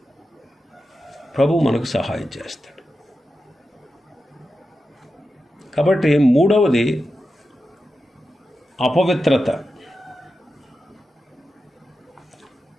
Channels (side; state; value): both; normal; correlation 0.90